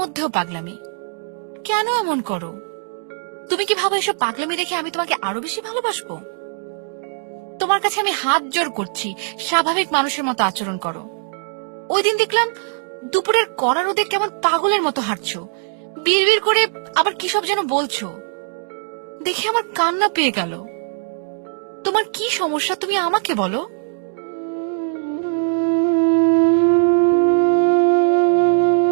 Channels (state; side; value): silent; left; digital silence